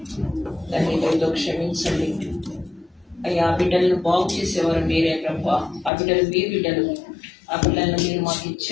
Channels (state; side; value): drops out; right; at 5.9 s